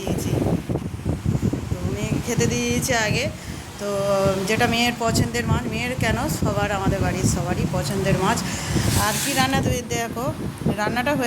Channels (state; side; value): identical; both; correlation 1.00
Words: তো মেয়েকে খেতে দিয়েছি আগে। তো যেটা মেয়ের পছন্দের মাছ, মেয়ের কেন সবার, আমাদের বাড়ির সবারই পছন্দের মাছ। আর কি রান্না তুমি দেখো, রান্নাটা